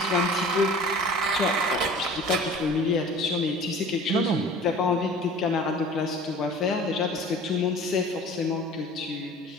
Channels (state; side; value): normal; both; correlation 0.43